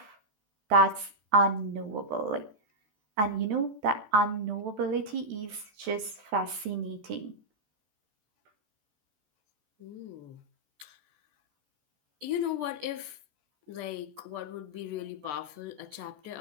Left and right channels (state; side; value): late; left; 14 ms